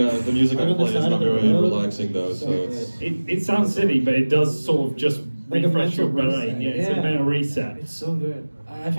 the music I Right on the play is side not of the very road. relaxing though, so it's. it sounds silly, but it does sort of just Like a refresh your mental brain. reset. Yeah, it's a Yeah. mental reset. It's so good. I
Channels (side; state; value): both; inverted; correlation -1.00